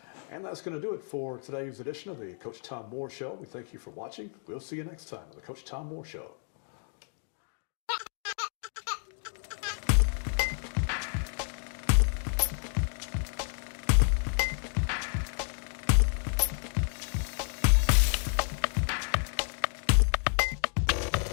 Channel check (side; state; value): right; silent; 56 dB below the other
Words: And that's going to do it for today's edition of the Coach Tom Moore Show. We thank you for watching. We'll see you next time on the Coach Tom Moore Show.